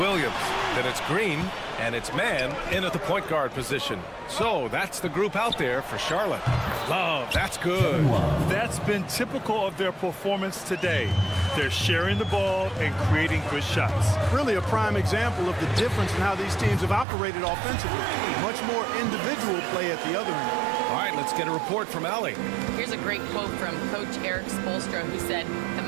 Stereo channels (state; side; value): drops out; left; at 17.1 s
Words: Then it's Green, and it's Mann in at the point guard position. So that's the group out there for Charlotte. Love, that's good. That's been typical of their performance today. They're sharing the ball and creating good shots. Really a prime example of the difference in how these teams have operated offensively. Much more individual play at the other end. All right, let's get a report from Allie. Here's a great quote from Coach Eric Spoelstra, who said, "The